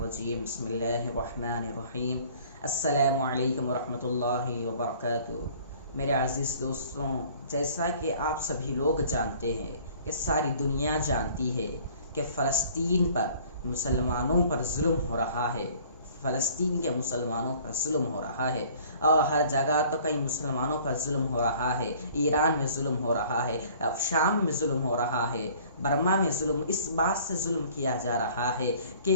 بسم اللہ الرحمن الرحیم السلام علیکم ورحمۃ اللہ وبرکاتہ۔ میرے عزیز دوستوں، جیسا کہ آپ سبھی لوگ جانتے ہیں کہ ساری دنیا جانتی ہے کہ فلسطین پر مسلمانوں پر ظلم ہو رہا ہے، فلسطین کے مسلمانوں پر ظلم ہو رہا ہے، اور ہر جگہ تو کئی مسلمانوں پر ظلم ہو رہا ہے۔ ایران میں ظلم ہو رہا ہے، اب شام میں ظلم ہو رہا ہے، برما میں ظلم، اس بات سے ظلم کیا جا رہا ہے کہ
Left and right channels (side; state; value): both; inverted; correlation -0.52